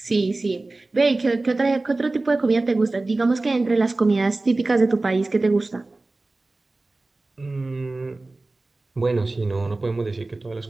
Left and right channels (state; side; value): quieter; left; 3.1 dB